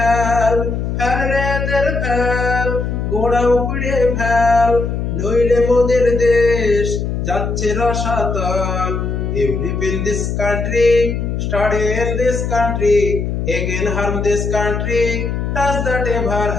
ফেল রে দের ফেল, গোড়া উপড়ে ফেল, নইলে মোদের দেশ যাচ্ছে রসাতল। You live in this country, study in this country, again harm this country, does that ever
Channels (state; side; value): noise; left; hum, 2 dB below the sound